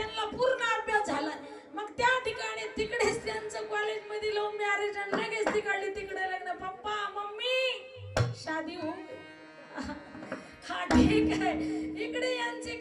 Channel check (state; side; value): identical; both; correlation 1.00